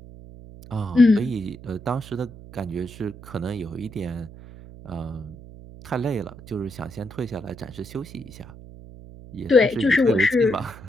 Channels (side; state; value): right; noise; hum, 17 dB below the sound